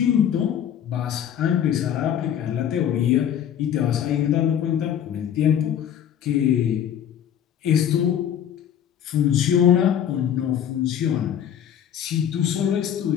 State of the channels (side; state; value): right; quieter; 9.6 dB